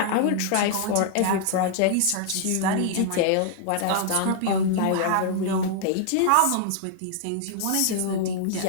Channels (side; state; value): both; different; correlation -0.01